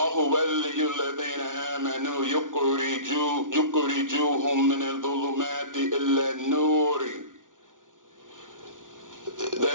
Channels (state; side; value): late; left; 0.88 ms